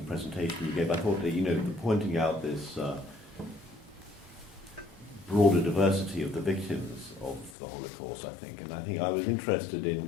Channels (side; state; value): right; drops out; at 7.6 s